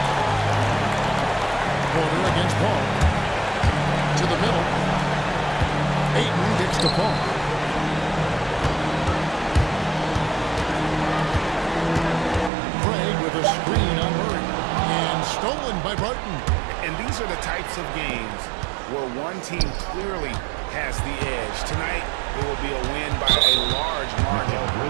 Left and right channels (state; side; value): drops out; left; at 12.5 s